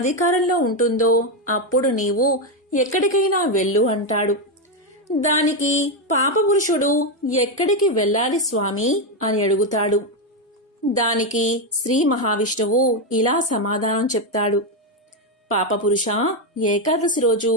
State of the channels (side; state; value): both; normal; correlation 0.06